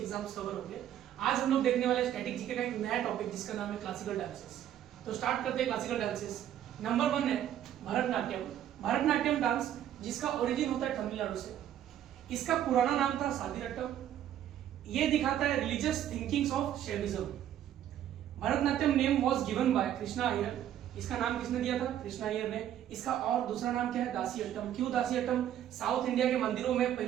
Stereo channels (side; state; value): left; quieter; 11.1 dB